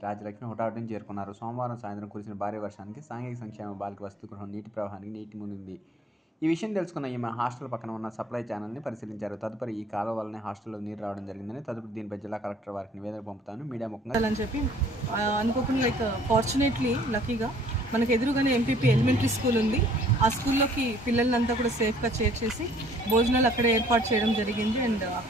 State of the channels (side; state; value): both; normal; correlation 0.57